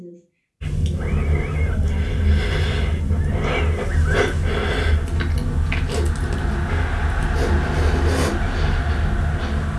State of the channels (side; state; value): both; identical; correlation 1.00